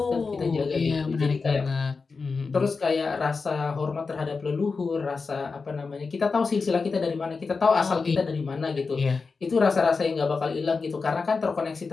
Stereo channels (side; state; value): right; quieter; 4.6 dB